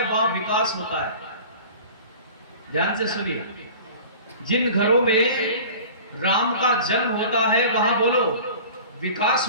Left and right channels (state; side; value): inverted; both; correlation -0.41